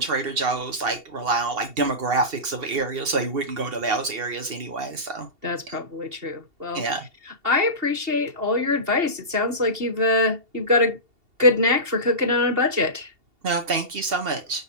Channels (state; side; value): late; left; 2.7 ms